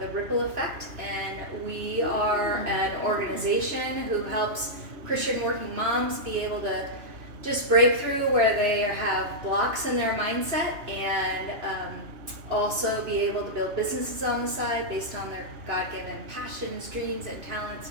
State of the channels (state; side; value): late; left; 2.9 ms